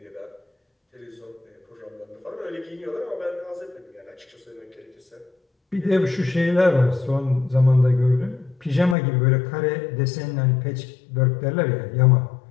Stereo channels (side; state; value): right; drops out; at 9.0 s